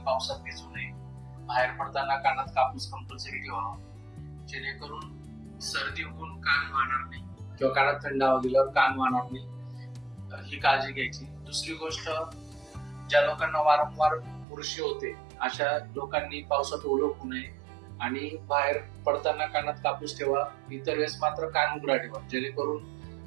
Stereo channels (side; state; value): left; drops out; at 14.5 s